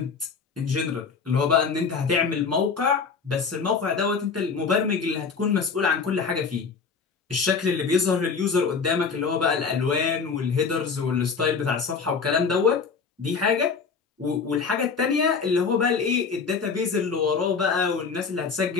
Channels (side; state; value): right; quieter; 5.4 dB